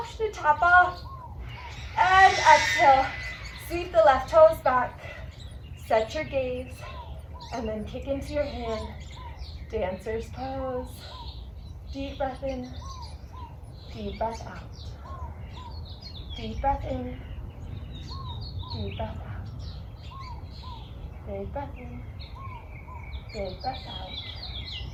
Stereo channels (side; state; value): both; identical; correlation 1.00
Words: to tap off. And exhale, sweep the left toes back. Set your gaze, and then kick into your hand. Dancer's pose. Deep breath in, deep breath out. Deep breath in, deep breath out. Big breath in, big breath out.